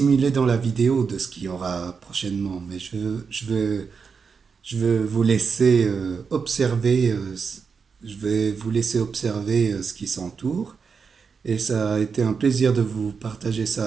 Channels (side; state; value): left; quieter; 5.6 dB